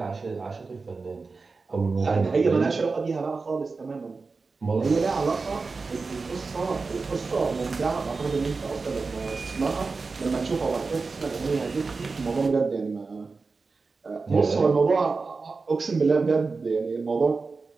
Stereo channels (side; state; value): left; quieter; 4.2 dB